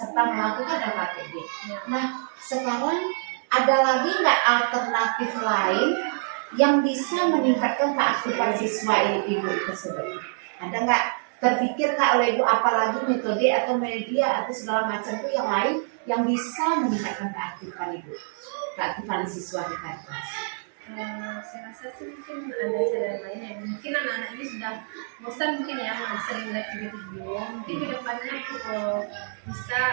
melakukan LKTB. Nah, sekarang ada lagi nggak alternatif lain yang bisa meningkatkan keaktifan siswa Ibu tersebut? Ada nggak terpikir nggak oleh Ibu apalagi metode atau media atau segala macam itu yang lain yang bisa meningkatkan keaktifan Ibu, keaktifan siswa di kelas? Saya rasa sih mungkin ada cara lain ya. Mungkin anak-anak ini sudah bosan mungkin ya sering lihat video. Mungkin kedepannya bisa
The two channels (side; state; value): left; silent; digital silence